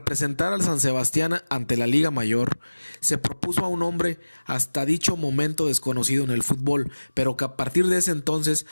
al San Sebastián ante la Liga Mayor, se propuso a un hombre hasta dicho momento desconocido en el fútbol, pero que a partir de ese entonces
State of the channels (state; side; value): inverted; both; correlation -1.00